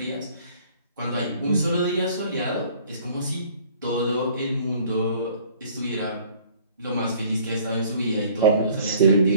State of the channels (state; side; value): inverted; both; correlation -0.54